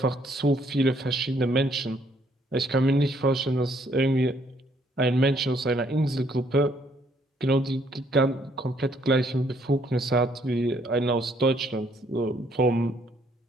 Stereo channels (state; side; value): normal; both; correlation 0.67